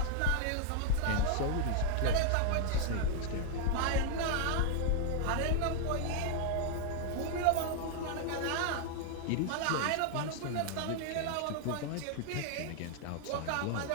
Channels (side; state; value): both; different; correlation 0.00